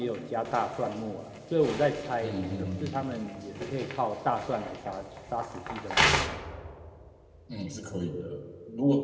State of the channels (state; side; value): identical; both; correlation 1.00